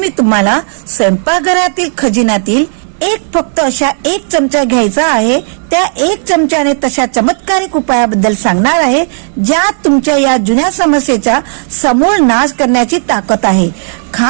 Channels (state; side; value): silent; left; 64 dB below the other